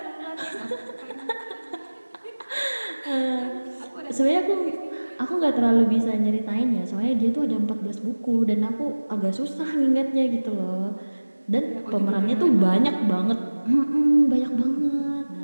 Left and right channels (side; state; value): both; inverted; correlation -1.00